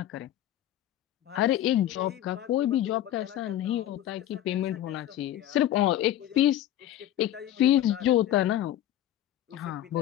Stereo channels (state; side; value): quieter; right; 12.5 dB